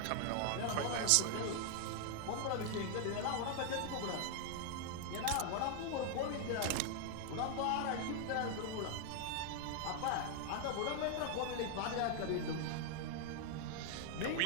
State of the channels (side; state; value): both; different; correlation 0.00